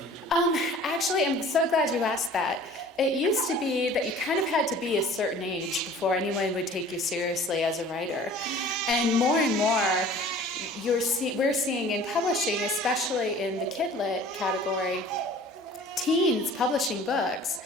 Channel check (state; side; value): normal; both; correlation 0.47